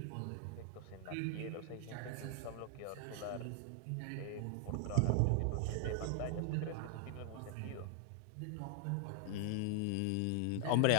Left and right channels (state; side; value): different; both; correlation 0.00